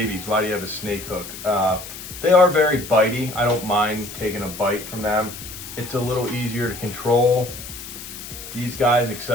why do you have a snake hook? They are very bitey. I don't mind taking a bite from them. It's a little easier to control. These guys,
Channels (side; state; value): left; noise; hiss, 12 dB below the sound